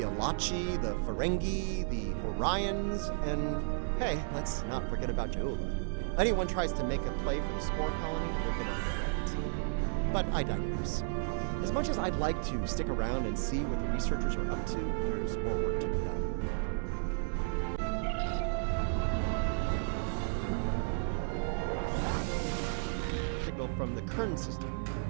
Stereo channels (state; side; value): silent; left; 56 dB below the other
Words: Alachi, the Ferengi, the Orions, and hey, let's not forget about Ja'ula. Anyone tries to make a play for the spore colony, they're gonna regret it. But I digress. As much as I'd like to stick around and see what the researchers are up to, there's more work to be done. Signal from the Kern system.